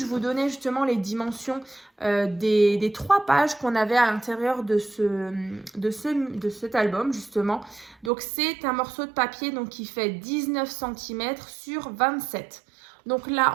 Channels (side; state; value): left; drops out; at 8.1 s